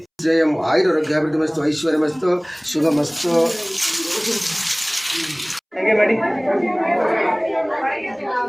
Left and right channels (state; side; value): identical; both; correlation 1.00